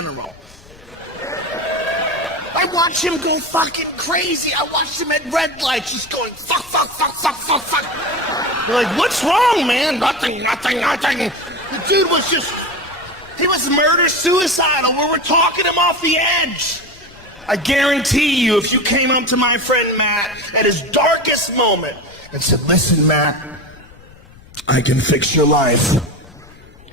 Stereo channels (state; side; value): noise; left; rumble, 23 dB below the sound